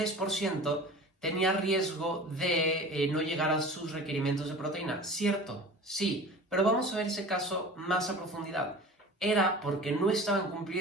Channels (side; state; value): both; normal; correlation 0.39